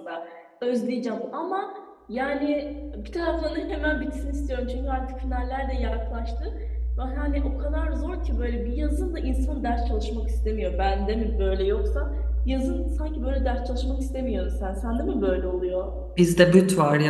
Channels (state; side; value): identical; both; correlation 1.00